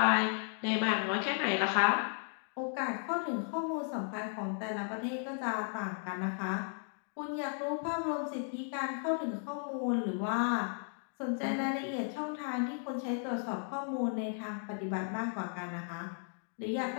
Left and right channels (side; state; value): right; silent; 54 dB below the other